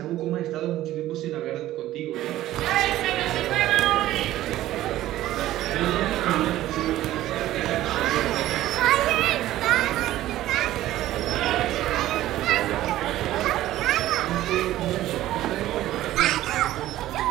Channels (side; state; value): left; quieter; 14.5 dB